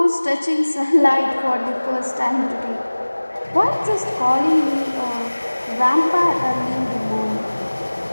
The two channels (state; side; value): inverted; both; correlation -1.00